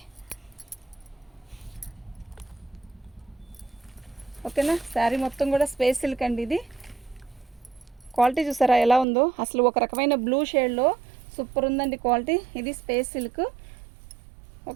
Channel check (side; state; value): left; drops out; at 9.1 s